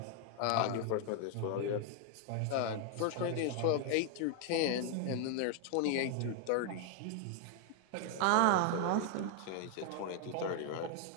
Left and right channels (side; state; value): both; different; correlation 0.00